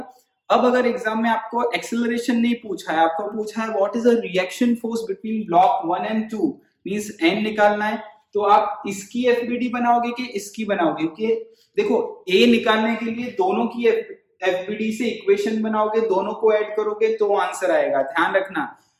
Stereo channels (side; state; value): both; identical; correlation 1.00